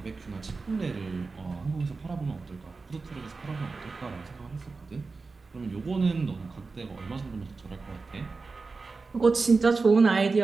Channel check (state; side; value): quieter; left; 4.1 dB